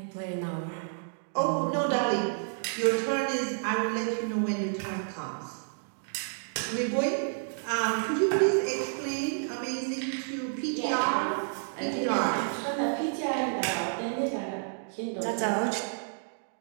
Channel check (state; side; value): silent; left; digital silence